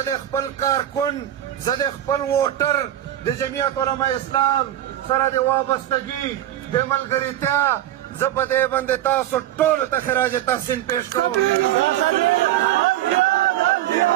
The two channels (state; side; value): quieter; left; 12.6 dB